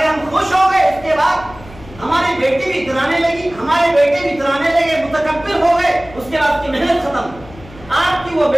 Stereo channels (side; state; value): left; noise; hum, 20 dB below the sound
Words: हम खुश हो गए। इसके बाद हमारी बेटी भी इतराने लगी, हमारे बेटे भी इतराने लगे, मुतकब्बिर हो गए। उसके बाद की मेहनत खत्म। आपकी वो